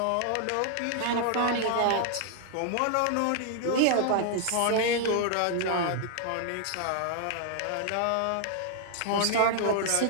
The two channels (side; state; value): both; different; correlation 0.00